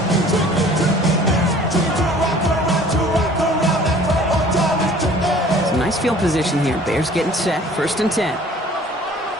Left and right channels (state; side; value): normal; both; correlation 0.51